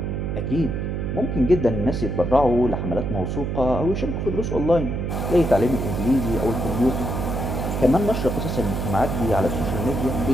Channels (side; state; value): right; noise; hum, 2 dB below the sound